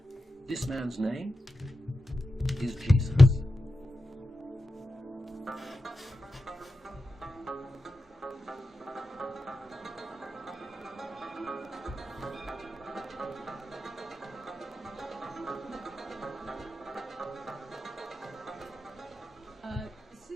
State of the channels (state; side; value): normal; both; correlation 0.91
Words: This man's name is Jesus.